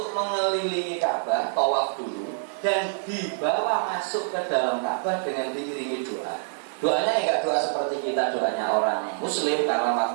mengelilingi Ka'bah, tawaf dulu, dan dibawa masuk ke dalam Ka'bah dengan diiringi doa. Doanya enggak doa seperti kita doanya orang Muslim, karena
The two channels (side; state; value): left; silent; digital silence